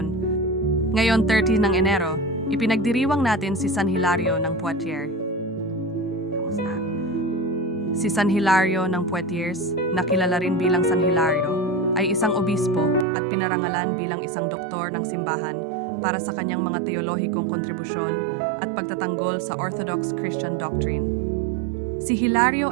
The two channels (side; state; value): left; drops out; at 13.1 s